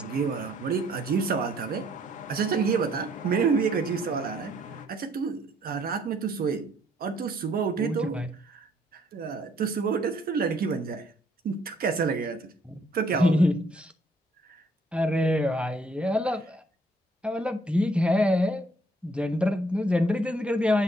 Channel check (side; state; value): both; normal; correlation 0.65